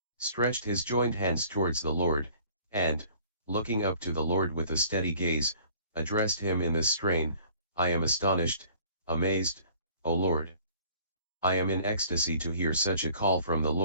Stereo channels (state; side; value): inverted; both; correlation -0.53